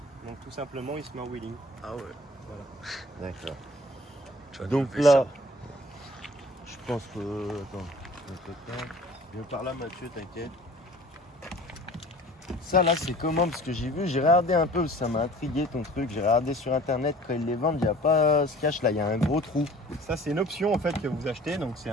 Donc tout simplement il se met en wheeling. Ah ouais. Voilà. D'accord. Donc là, je pense que. Attends, viens par là Mathieu, t'inquiète. Ça là c'est comment? Parce que j'ai regardé un peu, ça m'a intrigué ton truc, j'ai regardé sur internet quand ils les vendent, il n'y a pas ce cache là, il y a un gros trou. Ça c'est une option en fait que vous achetez, donc c'est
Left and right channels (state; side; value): normal; both; correlation 0.47